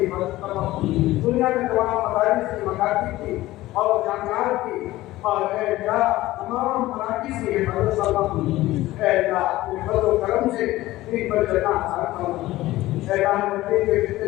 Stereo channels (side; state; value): right; quieter; 16.9 dB